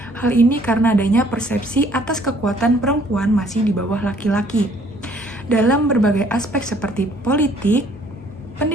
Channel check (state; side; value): normal; both; correlation 0.60